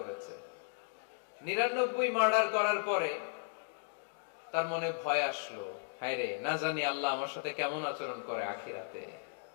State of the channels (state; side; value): silent; right; digital silence